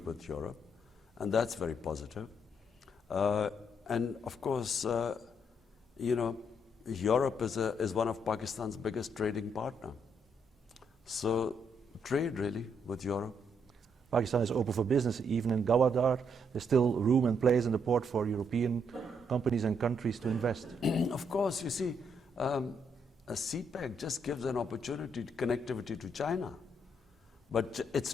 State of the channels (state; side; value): normal; both; correlation 0.74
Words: with Europe, and that's very positive. And of course, Europe is one of Pakistan's biggest trading partner. So trade really with Europe. Pakistan is open for business, even in Gawadar. There's still room and place in the port for European companies and countries to invest. Of course, you see, a CPEC just gives an opportunity to connectivity to China. But